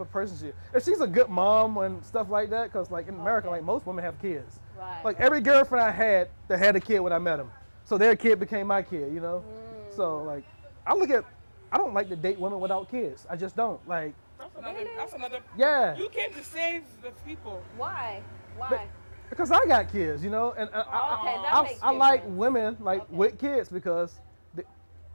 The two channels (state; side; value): inverted; both; correlation -1.00